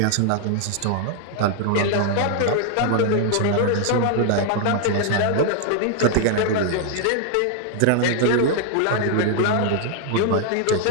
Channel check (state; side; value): different; both; correlation 0.00